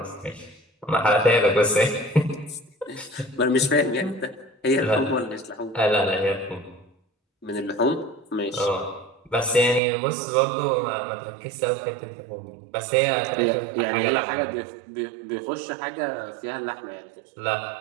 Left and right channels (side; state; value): left; drops out; at 9.8 s